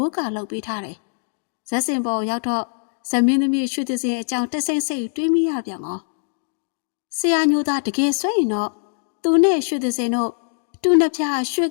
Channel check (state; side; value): silent; right; 59 dB below the other